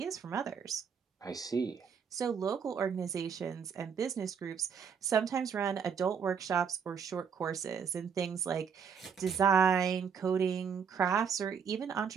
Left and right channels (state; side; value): quieter; left; 6.8 dB